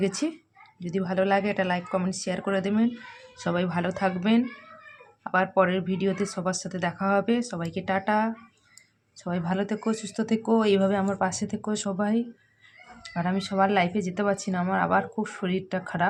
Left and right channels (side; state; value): both; identical; correlation 1.00